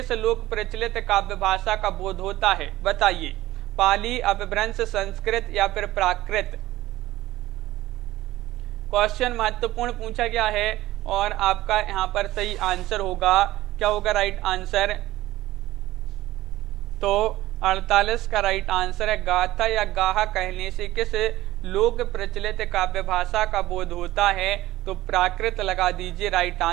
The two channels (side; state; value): left; quieter; 16.5 dB